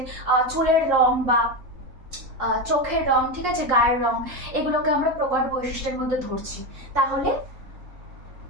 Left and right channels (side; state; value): left; late; 3.8 ms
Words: চুলের রং বা চোখের রং, ঠিক আছে, গায়ের রং, এগুলোকে আমরা প্রকট বৈশিষ্ট্যের মধ্যে ধরছি। তাহলে